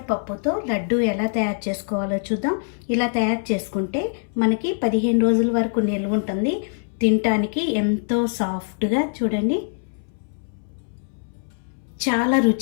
లడ్డు ఎలా తయారు చేసుకోవాలో చూద్దాం. ఇలా తయారు చేసుకుంటే మనకి 15 రోజుల వరకు నిల్వ ఉంటుంది. తినటానికి ఎంతో సాఫ్ట్గా, చూడండి, చాలా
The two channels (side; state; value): right; silent; 63 dB below the other